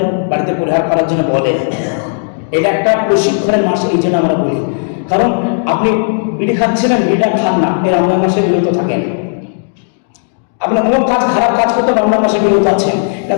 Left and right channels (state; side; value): silent; right; digital silence